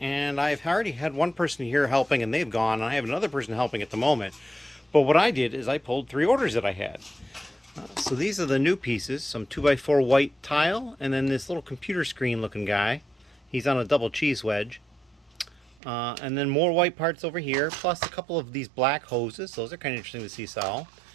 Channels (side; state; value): left; drops out; at 15.8 s